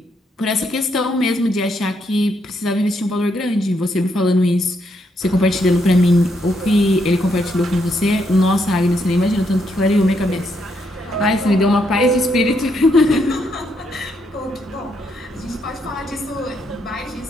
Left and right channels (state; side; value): normal; both; correlation 0.76